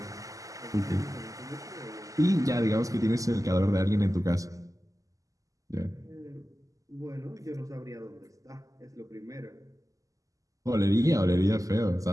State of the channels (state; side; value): late; left; 0.16 ms